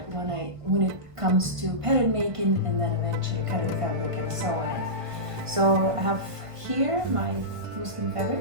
when it comes to pattern making and then eventually cutting the fabric and so on. So I have here my muslin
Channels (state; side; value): late; left; 1.5 ms